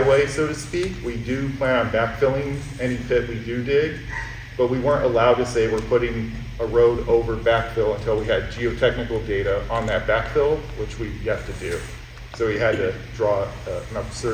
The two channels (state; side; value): identical; both; correlation 1.00